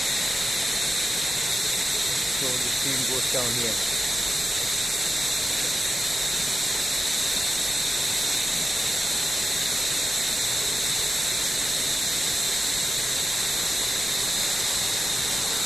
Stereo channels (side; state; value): both; normal; correlation 0.92